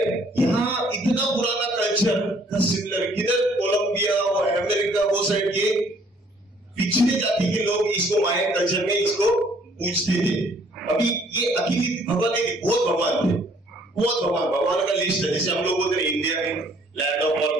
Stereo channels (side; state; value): both; normal; correlation 0.61